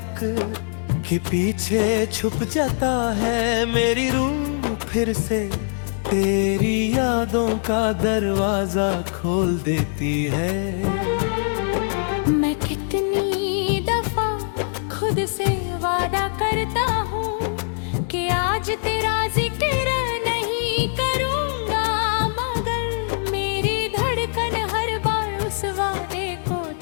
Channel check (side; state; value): right; silent; digital silence